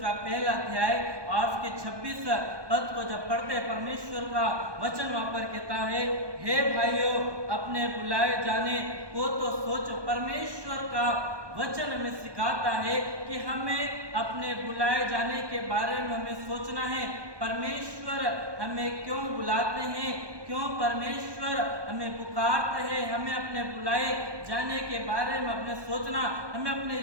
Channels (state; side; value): late; left; 1.2 ms